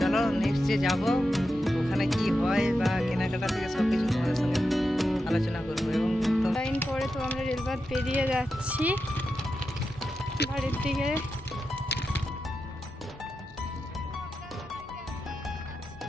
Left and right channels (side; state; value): both; normal; correlation 0.89